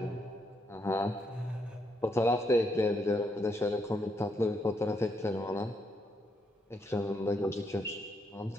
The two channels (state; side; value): normal; both; correlation 0.77